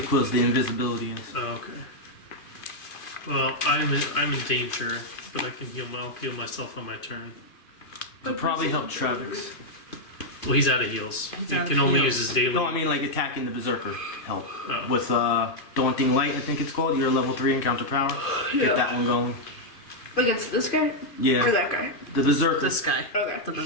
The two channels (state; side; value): late; right; 2.5 ms